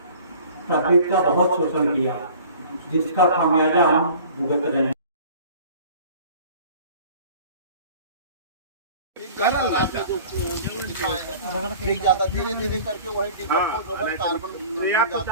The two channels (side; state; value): both; inverted; correlation -0.45